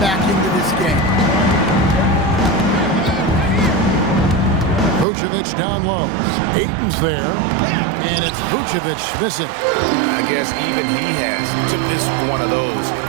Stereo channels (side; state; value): left; drops out; at 5.1 s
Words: back into this game. Vucevic down low. Ayton's there, and it's Vucevic missing. I guess even he has to miss one of those